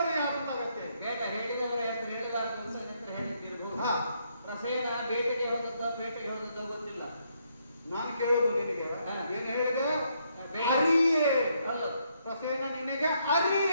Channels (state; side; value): inverted; both; correlation -0.74